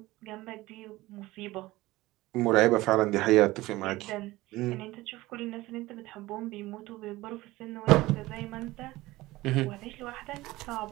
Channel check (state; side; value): quieter; left; 18.7 dB